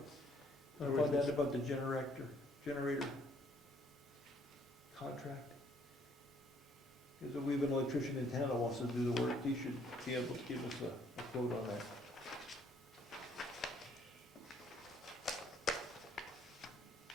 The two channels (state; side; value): normal; both; correlation 0.64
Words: I found out about the generator contract. Because if we have an electrician in town that wants to do the work, he should be able to give us a quote on that.